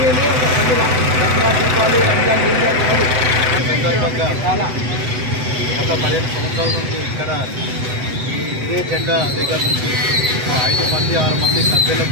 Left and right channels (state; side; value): late; left; 7.9 ms